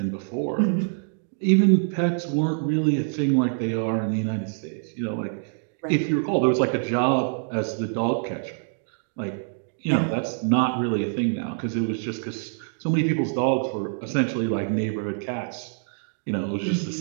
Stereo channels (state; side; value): silent; left; digital silence